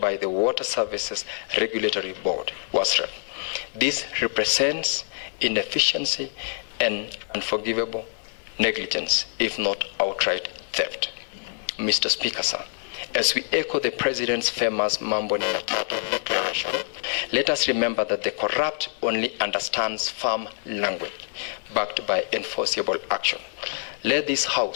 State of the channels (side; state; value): right; silent; digital silence